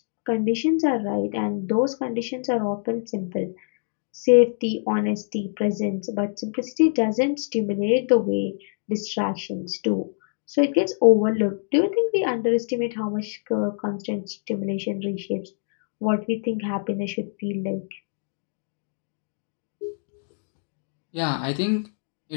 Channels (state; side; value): silent; right; digital silence